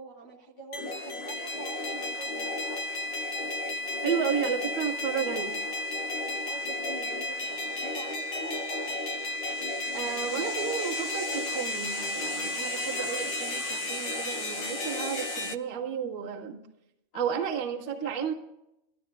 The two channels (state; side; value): late; right; 12 ms